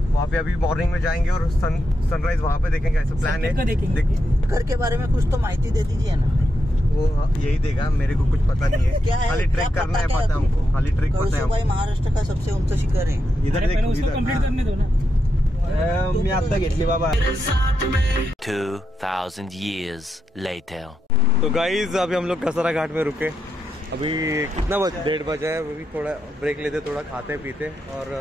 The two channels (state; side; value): normal; both; correlation 0.85